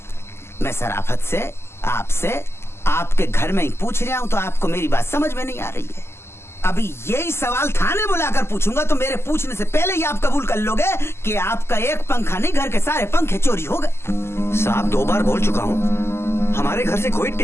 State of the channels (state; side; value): late; right; 0.12 ms